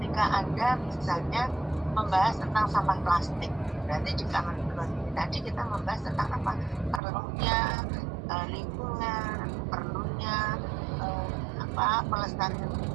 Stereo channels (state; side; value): drops out; left; at 7.0 s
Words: Anda misalnya membahas tentang sampah plastik, berarti di common ground ini tadi kita membahas tentang apa? Perlunya lingkungan, perlunya pelestarian